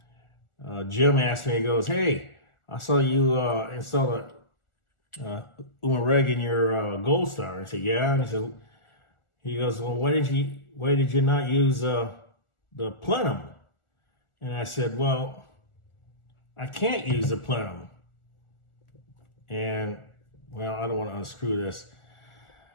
and Jim asked me, he goes, "Hey, I saw you install a Pleumn reg in your Goldstar." I said, "Yeah." And he goes, "Well, why did you not use the Pleumn?" And I said, "Well, I can't use the Pleumn." And well, I don't want to unscrew this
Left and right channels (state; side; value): late; right; 1.4 ms